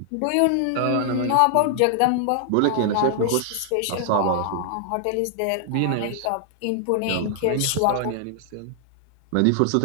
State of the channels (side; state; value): both; different; correlation 0.00